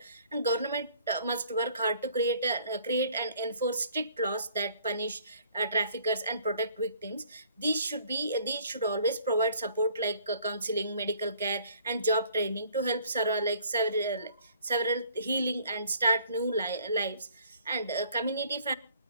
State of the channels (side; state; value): both; inverted; correlation -0.58